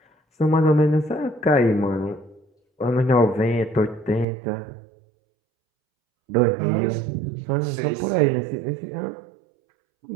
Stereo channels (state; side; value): drops out; left; at 4.2 s